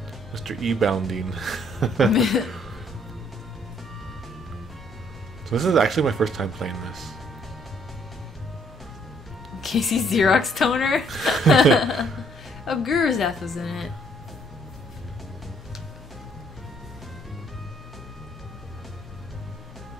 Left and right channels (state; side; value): normal; both; correlation 0.66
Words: Mr. E-Bounding. So this is actually my first time playing this. Casey Xerox toner? Oh, Guru's F was in it.